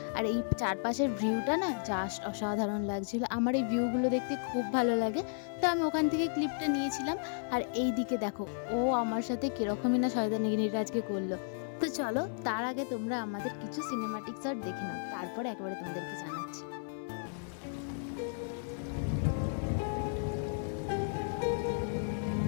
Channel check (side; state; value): right; silent; 55 dB below the other